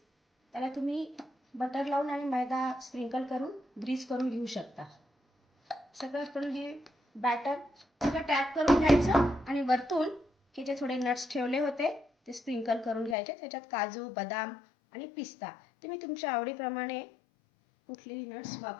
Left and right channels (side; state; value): right; drops out; at 13.2 s